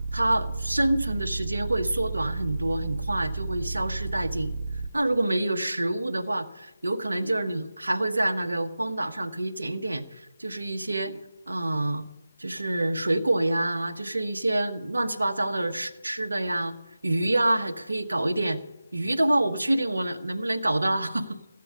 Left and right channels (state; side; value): inverted; both; correlation -0.95